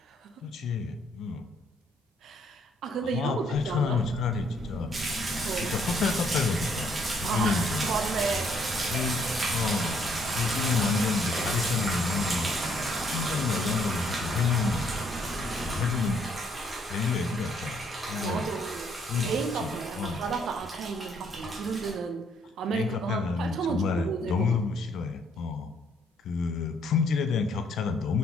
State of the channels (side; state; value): both; normal; correlation 0.68